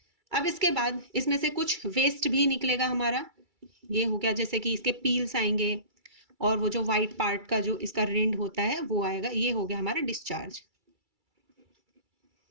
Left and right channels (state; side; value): late; left; 2.3 ms